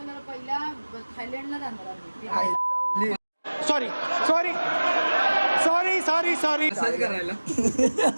पहिला थायलंडला जाणार आम्ही. Sorry sorry sorry sorry sorry असंच करायला.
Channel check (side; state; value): both; inverted; correlation -1.00